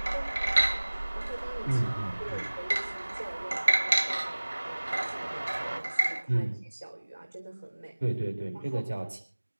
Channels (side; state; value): both; inverted; correlation -1.00